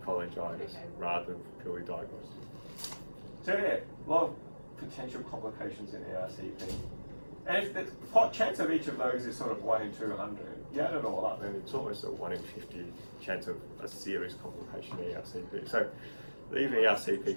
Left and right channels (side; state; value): both; inverted; correlation -1.00